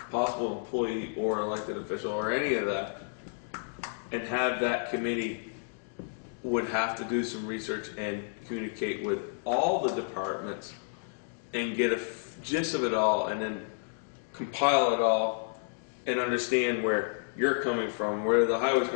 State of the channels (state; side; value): silent; right; digital silence